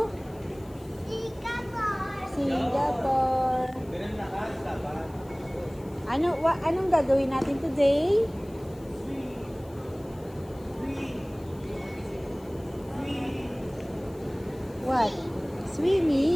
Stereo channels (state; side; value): noise; left; hiss, 26 dB below the sound